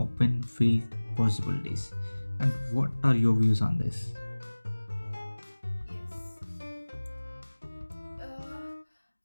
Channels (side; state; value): both; inverted; correlation -1.00